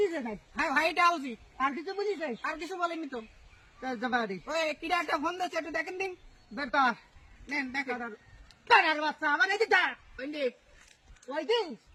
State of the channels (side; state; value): both; identical; correlation 1.00